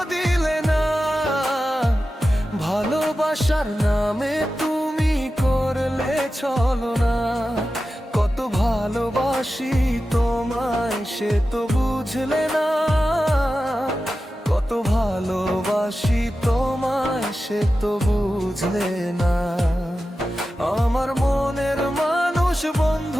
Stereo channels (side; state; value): both; normal; correlation 0.93